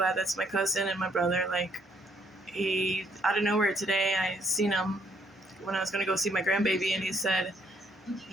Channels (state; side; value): normal; both; correlation 0.68